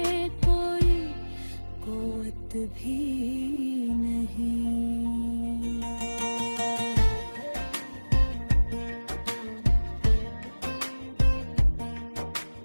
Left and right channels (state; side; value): inverted; both; correlation -1.00